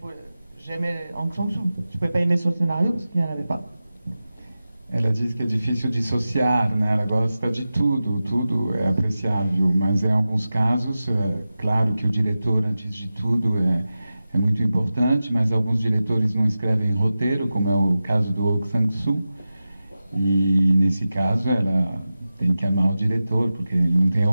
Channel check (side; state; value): both; inverted; correlation -0.94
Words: j'aimais Hong Sang-soo. Je ne pouvais pas aimer son scénario parce qu'il n'y en avait pas. Ela diz que é difícil dissociar, né? Ela gosta de tudo, tudo é apreciável, mas em alguns casos, claro que o diretor, antes de tudo, é muito importante, mas alguns diretores não escrevem roteiro, como é o caso do Hong Sang-soo, e nesse caso ela tem que amar o diretor, porque ele não tem